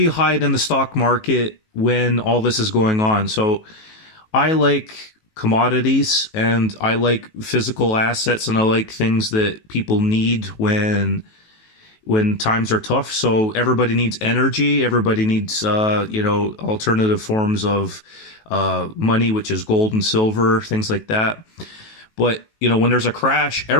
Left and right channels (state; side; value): late; right; 19 ms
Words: you hide in the stock market when all this is going on? So I like commodities, and I like physical assets, and I like things that people need when times are tough. So everybody needs energy. Everybody needs, alternative forms of money, which is gold and silver, things like that. But, when there's a crash,